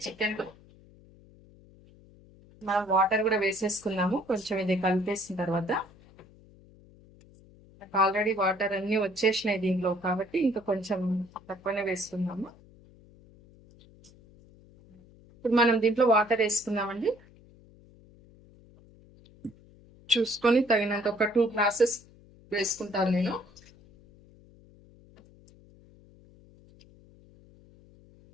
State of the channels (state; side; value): noise; left; hum, 25 dB below the sound